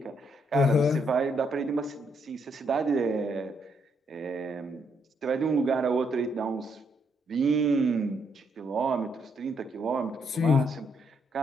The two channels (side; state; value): both; normal; correlation 0.74